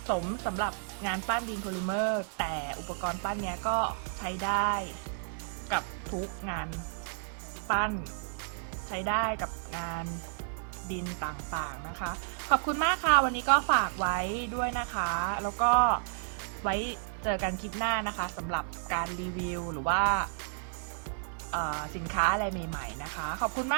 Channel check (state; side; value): silent; left; digital silence